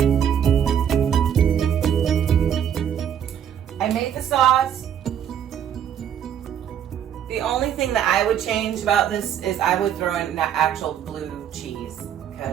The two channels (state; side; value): quieter; left; 9.2 dB